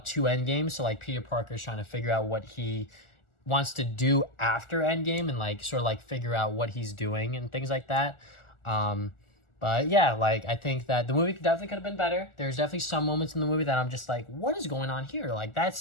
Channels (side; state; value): right; late; 1.4 ms